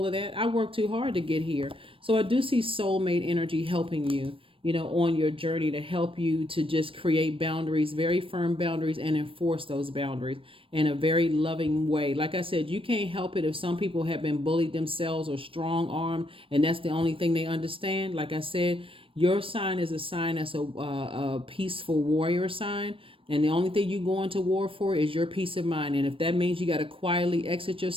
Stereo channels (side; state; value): left; late; 0.26 ms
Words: of that. I worked too hard to get here. So I do see soulmate energy helping you, on your journey, to help you to just create boundaries, very firm boundaries, and enforce those boundaries in a very loving way. Like I said, you can't help it if some people have been bullied themselves or strong armed, and that's the only thing they understand. Like I said, your sign is a sign that's a peaceful warrior sign. And the only thing you go into war for is your peace of mind. And if that means you got to quietly exit